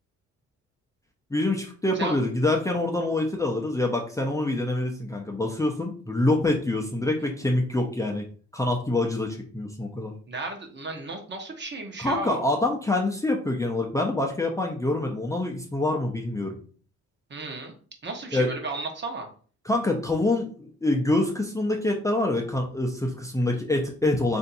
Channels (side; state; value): both; normal; correlation 0.66